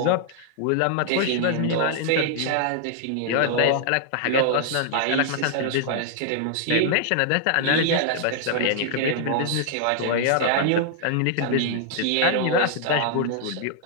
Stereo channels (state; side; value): different; both; correlation 0.00